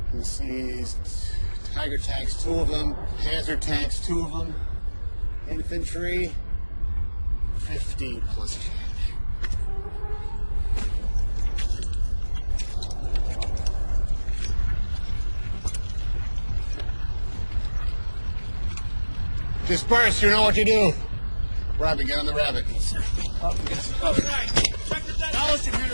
you see Tiger tanks, 2 of them, Panzer tanks, 2 of them, infantry, 50 plus change. Disperse, you know what you do. Rabbit, get on the rabbit. Up against the cover. Alice and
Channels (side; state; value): both; inverted; correlation -1.00